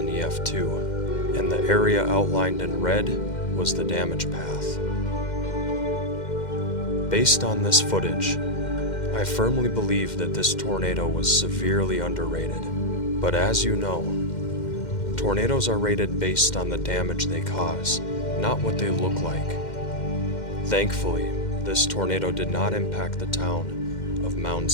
EF2, and the area outlined in red was the damage path. Based on this footage, I firmly believe that this tornado was severely underrated, but as you know, tornadoes are rated based on the damage they cause, not what they look like. Thankfully, this tornado did not impact the town of Mound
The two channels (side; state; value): right; late; 2.1 ms